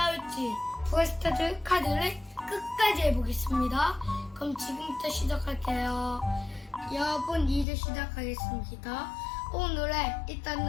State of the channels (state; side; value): drops out; right; at 7.7 s